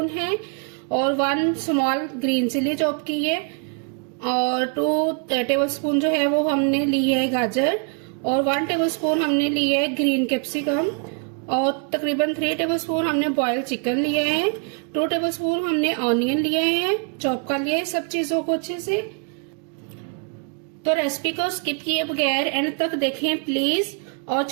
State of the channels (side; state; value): left; quieter; 38.6 dB